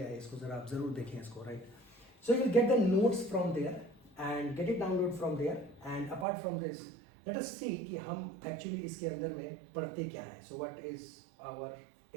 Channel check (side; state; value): left; drops out; at 6.2 s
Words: है, इसको ज़रा आप ज़रूर देखें इसको, right. So you will get the notes from there and get it download from there, and apart from this let us see कि हम एक्चुअली इसके अंदर में पढ़ते क्या है. So what is our